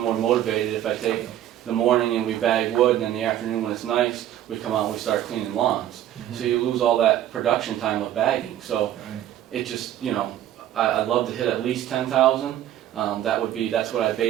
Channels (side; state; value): left; quieter; 12.1 dB